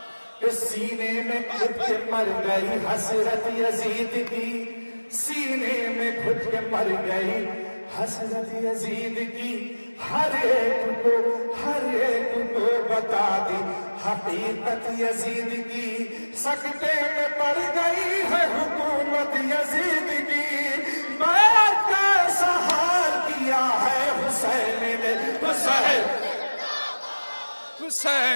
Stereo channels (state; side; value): inverted; both; correlation -1.00